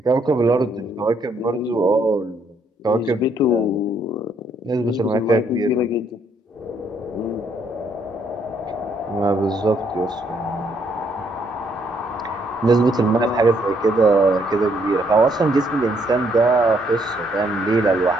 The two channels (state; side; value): normal; both; correlation 0.70